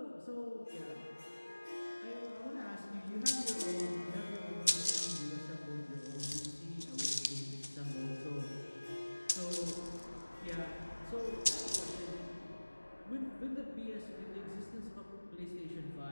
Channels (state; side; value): inverted; both; correlation -1.00